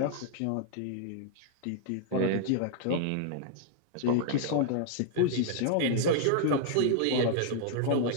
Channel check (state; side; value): different; both; correlation 0.00